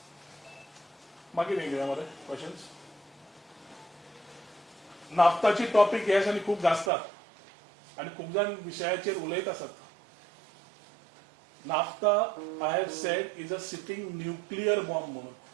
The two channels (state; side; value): drops out; left; at 6.9 s